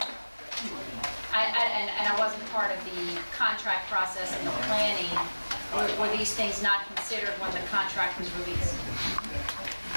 I wasn't part of the contract process and the planning. Were these things not considered when the contract was released?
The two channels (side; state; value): both; inverted; correlation -1.00